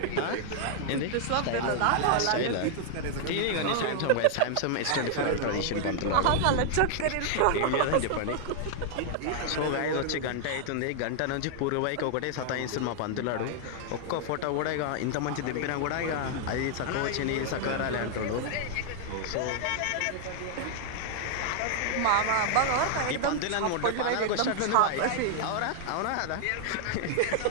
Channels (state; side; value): different; both; correlation 0.00